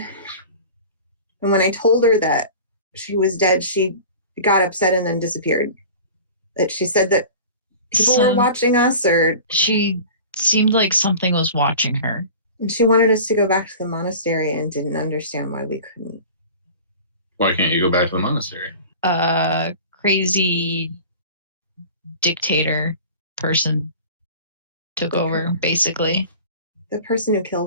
And when I told her that she was dead, she got upset and then disappeared. That she said that people were watching us, or she seemed like something was watching her. And she wanted us to go back to the monastery and didn't understand why we couldn't. Why can't you go back to the monastery? Crazy dictator person took over, basically. The person who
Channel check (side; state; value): both; inverted; correlation -0.39